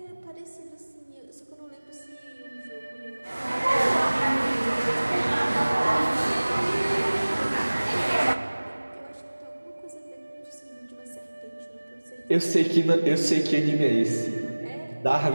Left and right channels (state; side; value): inverted; both; correlation -1.00